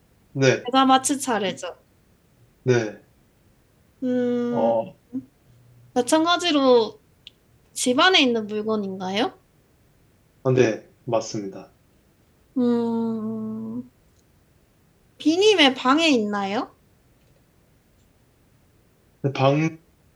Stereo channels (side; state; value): both; identical; correlation 1.00